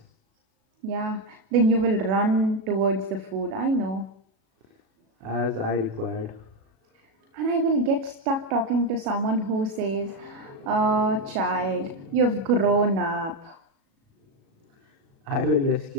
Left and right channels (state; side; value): late; left; 37 ms